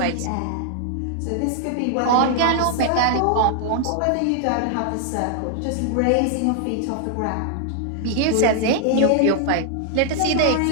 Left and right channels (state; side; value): different; both; correlation 0.00